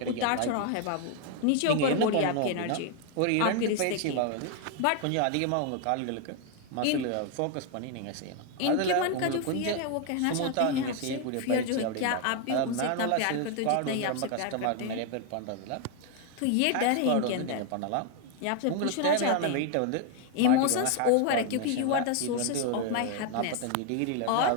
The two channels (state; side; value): different; both; correlation 0.01